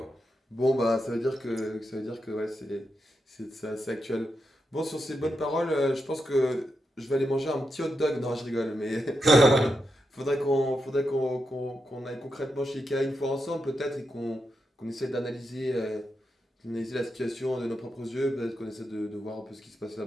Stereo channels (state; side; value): normal; both; correlation 0.86